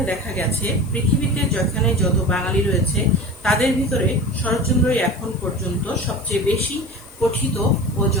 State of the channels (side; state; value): left; noise; hiss, 23 dB below the sound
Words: দেখা গেছে পৃথিবীতে যেখানে যত বাঙালি রয়েছে তাদের ভিতরে শরৎচন্দ্রই এখন পর্যন্ত সবচেয়ে বেশি পঠিত ও